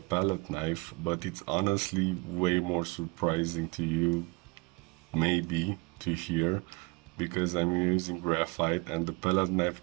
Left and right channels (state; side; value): quieter; left; 27.2 dB